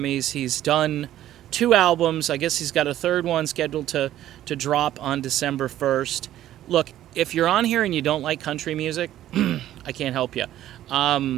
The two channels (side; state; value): left; quieter; 12.8 dB